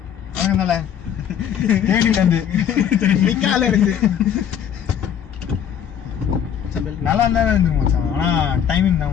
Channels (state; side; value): quieter; right; 9.0 dB